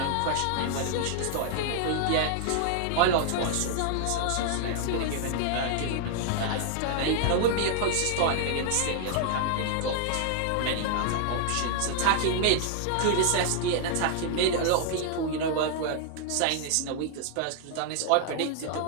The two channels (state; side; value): different; both; correlation 0.00